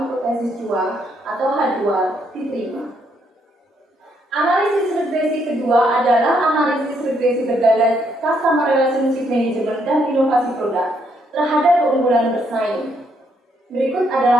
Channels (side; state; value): both; normal; correlation 0.73